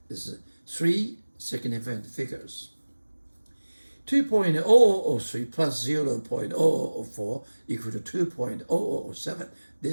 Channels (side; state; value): both; inverted; correlation -1.00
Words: This is 3 significant figures. 2.0003 plus 0.0004 equal to 2.0007.